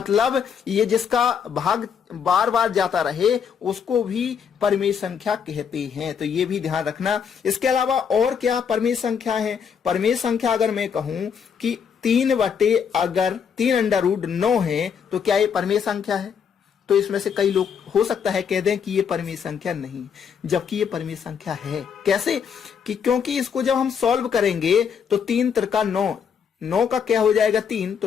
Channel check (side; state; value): right; quieter; 7.1 dB